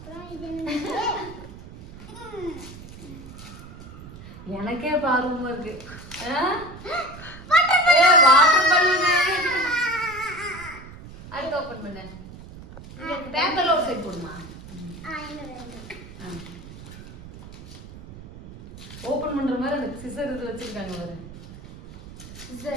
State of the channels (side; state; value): right; noise; rumble, 15 dB below the sound